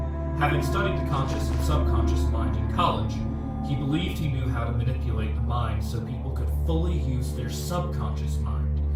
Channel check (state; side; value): identical; both; correlation 1.00